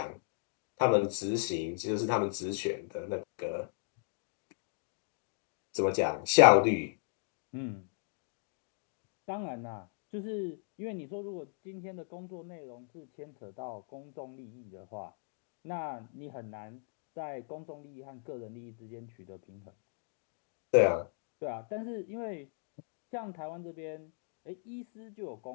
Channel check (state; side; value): silent; right; digital silence